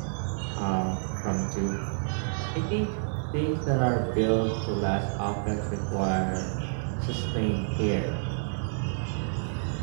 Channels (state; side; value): silent; left; 59 dB below the other